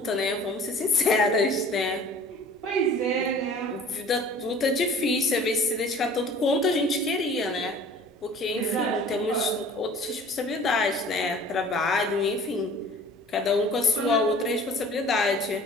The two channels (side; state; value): both; normal; correlation 0.47